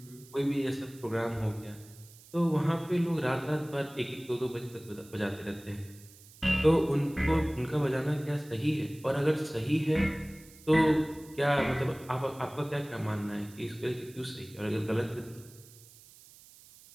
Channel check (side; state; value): right; noise; hiss, 22 dB below the sound